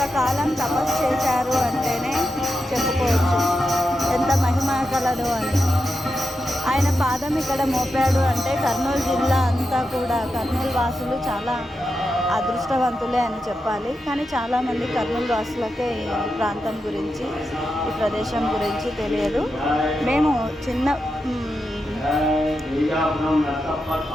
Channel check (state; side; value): normal; both; correlation 0.88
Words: తపస్సు చేశారు అంటేనే చెప్పుకోవచ్చు ఎంత మహిమ కలదు అని. ఆయన పాదం ఇక్కడ మోపాడు అంటే కర్నూలు జిల్లా అంతా కూడా, కర్నూలు వాసులు చాలా అదృష్టవంతులే అని చెప్పాలి. కానీ చాలామంది కర్నూలు వాసులకే ఈ ప్రాంతం గురించి, ఈ ప్రదేశం గురించి తెలియదు. మేము చిన్న